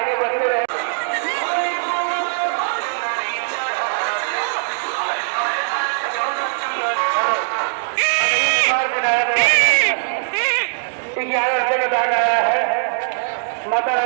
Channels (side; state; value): left; silent; digital silence